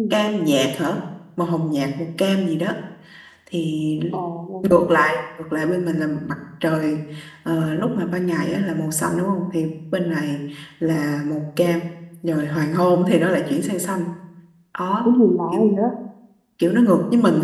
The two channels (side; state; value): both; identical; correlation 1.00